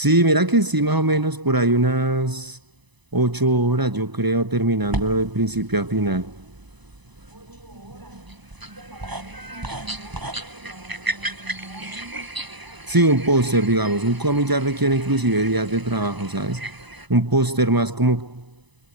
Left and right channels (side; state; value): left; late; 1.0 ms